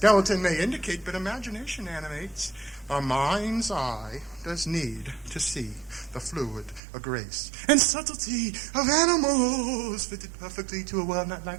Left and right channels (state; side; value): drops out; left; at 6.8 s